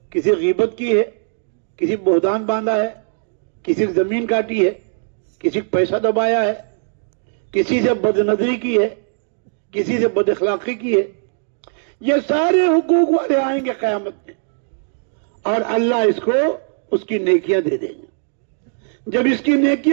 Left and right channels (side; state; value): left; silent; digital silence